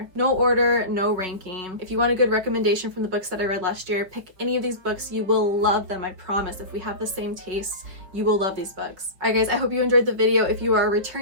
No order, no ranking. If you want a good recommendation from the books that I read last year, pick any of these books. You will love them, I promise. If we have the same tastes, you will love these books. Alright guys, I hope you enjoyed the video. If you are a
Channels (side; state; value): left; late; 5.6 ms